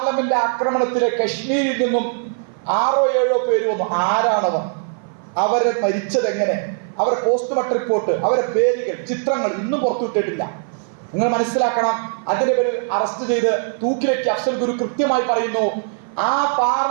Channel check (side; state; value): left; silent; 56 dB below the other